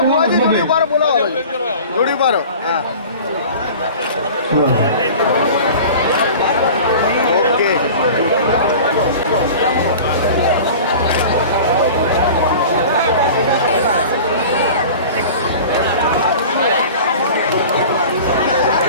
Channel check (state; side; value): inverted; both; correlation -0.39